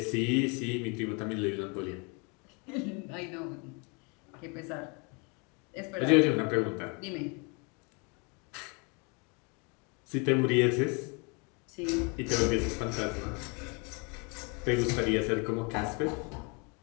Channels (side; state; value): right; quieter; 32.6 dB